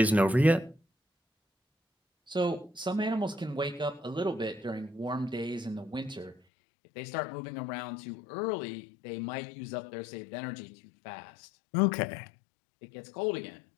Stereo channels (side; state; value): right; drops out; at 6.4 s